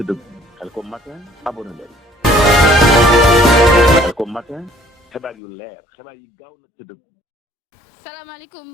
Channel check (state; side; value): drops out; right; at 5.4 s